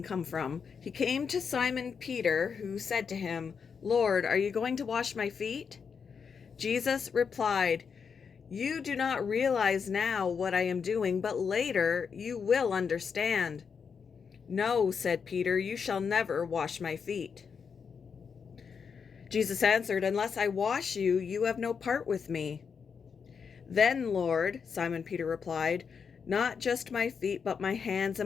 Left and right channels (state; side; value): quieter; right; 6.2 dB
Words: Simon Peter, who said to him, "Lord, are you going to wash my feet?" Jesus replied, "You do not realize now what I am doing, but later you will understand." "No," said Peter, "you shall never wash my feet." Jesus answered, "Unless I wash you, you have no part with me." "Then, Lord," Simon Peter replied, "not just my feet, but my hands